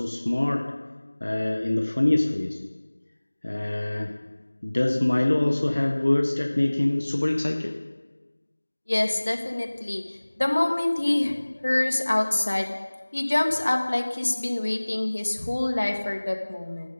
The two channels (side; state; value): both; inverted; correlation -1.00